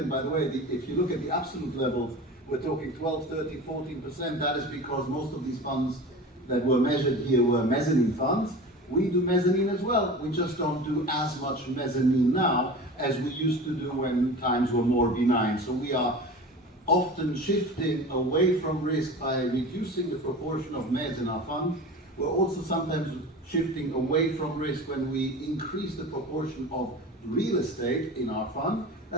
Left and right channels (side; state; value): both; normal; correlation 0.34